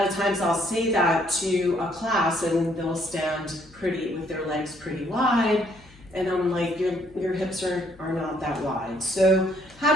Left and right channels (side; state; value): left; noise; hum, 25 dB below the sound